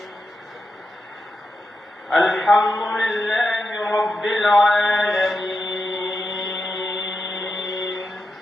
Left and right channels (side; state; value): both; normal; correlation 0.88